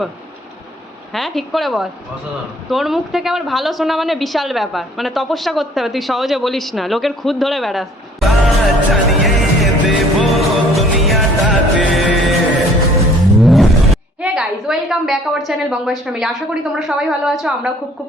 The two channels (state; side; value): normal; both; correlation 0.57